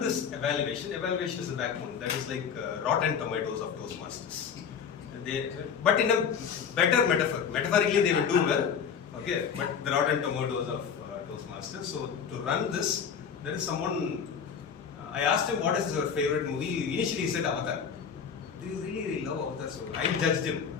this evaluation is the backbone. That is like rotten tomatoes of Toastmasters. But in a better metaphor. Metaphorically, they will do well. Okay, but the rotten tomatoes of Toastmasters. So to run this, there is someone. I asked him what is your favorite movie. Initially, he said Avatar. Do you really love Avatar? So I judged him.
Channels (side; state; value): right; quieter; 7.0 dB